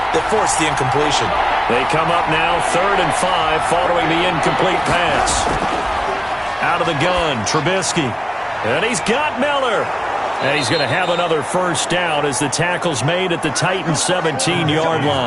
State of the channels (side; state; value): both; identical; correlation 1.00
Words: that forced the incompletion. They come up now, 3rd and 5, following the incomplete pass. Out of the gun, Trubisky. And he's got Miller. And he's going to have another first down as the tackle's made at the Titans' 17-yard